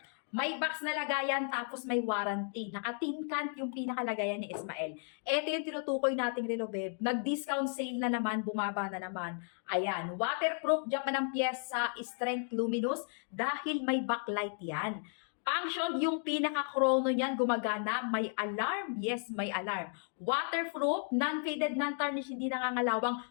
May box na lagayan, tapos may warranty. Naka-tin can yung pinakalagayan ni Ismael. Ito yung tinutukoy nating relo, babe. Nag-discount sale na naman, bumaba na naman. Ayan, waterproof, diyan pa ng pyesa, strength luminous, dahil may backlight yan. Function, yung pinaka-chrono niyan, gumagana, may alarm. Yes, may alarm. Waterproof, non-faded, non-tarnish, hindi nangangalawang,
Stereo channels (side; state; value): right; silent; 55 dB below the other